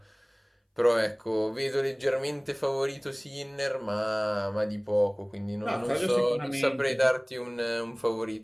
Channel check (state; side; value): identical; both; correlation 1.00